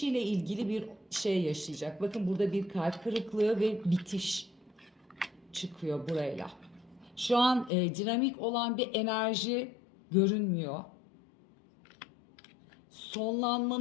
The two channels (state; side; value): drops out; right; at 7.7 s